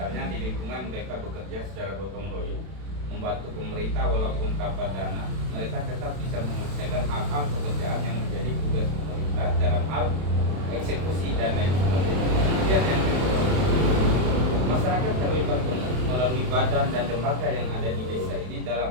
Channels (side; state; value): left; late; 32 ms